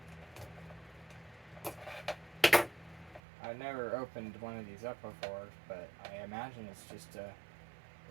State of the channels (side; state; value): left; drops out; at 3.2 s